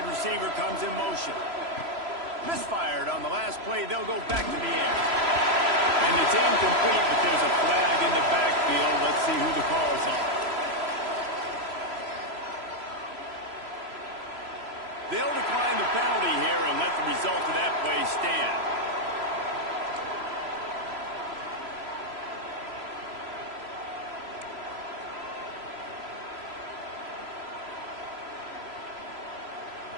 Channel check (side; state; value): left; late; 3.0 ms